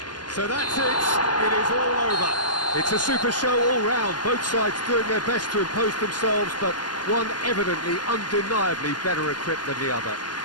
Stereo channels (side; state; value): right; late; 0.70 ms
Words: So that's it. It is all over. It's a super show all round. Both sides doing their best to impose themselves, but one evidently, undeniably better equipped than the other.